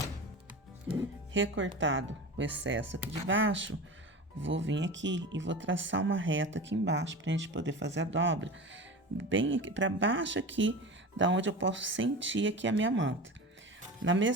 Recortado o excesso aqui de baixo, vou vir aqui e vou traçar uma reta aqui embaixo pra gente poder fazer a dobra bem aqui para baixo aqui, da onde eu posso sentir aqui a minha manta. Na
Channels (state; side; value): normal; both; correlation 0.30